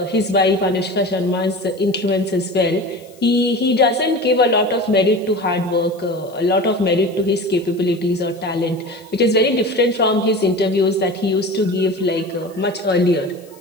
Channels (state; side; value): noise; left; hiss, 27 dB below the sound